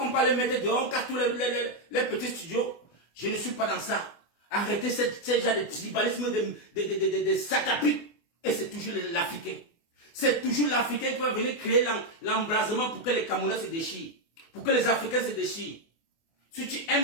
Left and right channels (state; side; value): late; right; 24 ms